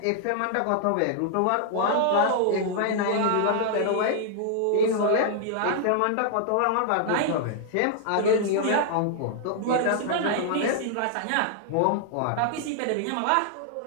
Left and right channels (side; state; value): both; different; correlation -0.01